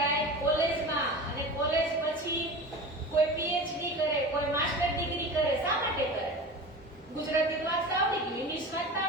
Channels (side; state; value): both; normal; correlation 0.32